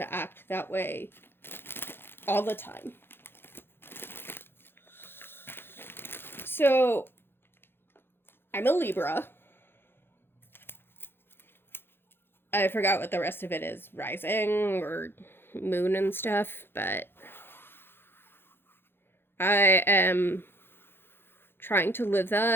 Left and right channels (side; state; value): right; late; 0.11 ms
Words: act that way all the time. So, I'm a Libra. I forgot what the rest of it is, rising or moon and stuff, but I am trying to live